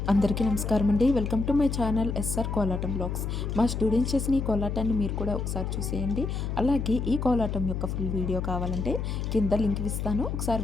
అందరికీ నమస్కారం అండి. Welcome to my channel SR Kolatam blogs. మా స్టూడెంట్స్ చేసిన ఈ కోలాటాన్ని మీరు కూడా ఒకసారి చూసేయండి. అలాగే ఈ కోలాటం యొక్క ఫుల్ వీడియో కావాలంటే కింద లింక్ ఇస్తాను, ఒకసారి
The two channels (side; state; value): left; noise; hum, 3 dB below the sound